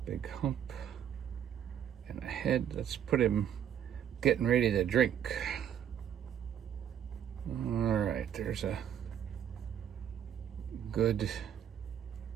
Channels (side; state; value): left; quieter; 9.4 dB